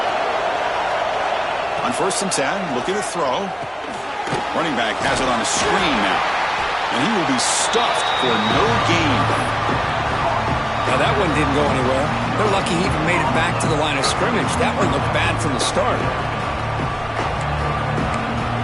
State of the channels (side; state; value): both; identical; correlation 1.00